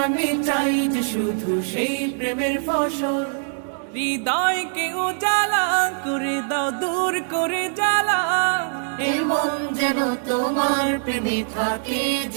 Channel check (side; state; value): left; silent; digital silence